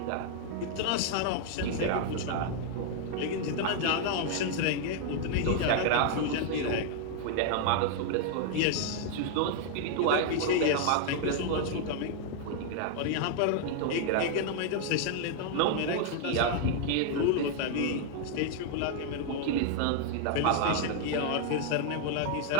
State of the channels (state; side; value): different; both; correlation 0.00